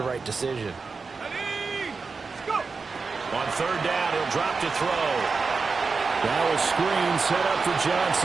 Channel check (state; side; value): quieter; left; 4.6 dB